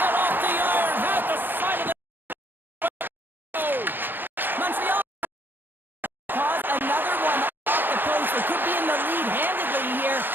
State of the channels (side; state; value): left; late; 0.095 ms